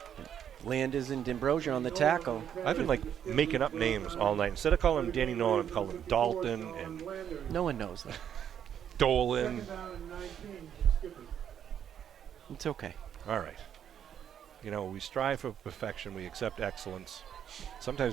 Landers and D'Ambrosio on the tackle. I've been making up names all night. Instead of calling him Danny Nolan, I've called him Dalton and No one knows that. Dolan. It's okay. All right. We strive for perfection. We accept excellence.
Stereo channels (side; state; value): left; quieter; 9.1 dB